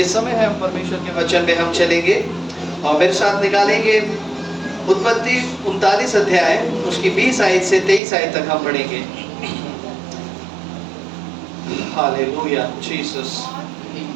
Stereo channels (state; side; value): drops out; left; at 8.0 s